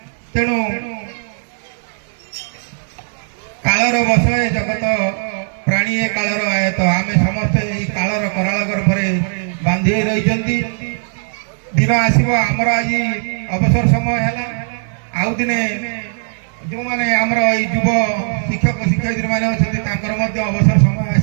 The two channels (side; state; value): left; silent; 67 dB below the other